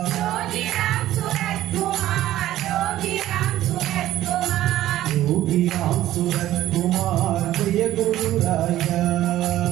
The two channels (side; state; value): left; quieter; 13.9 dB